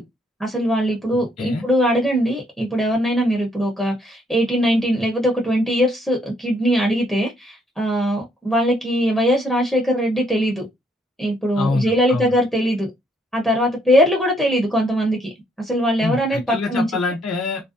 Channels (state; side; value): normal; both; correlation 0.70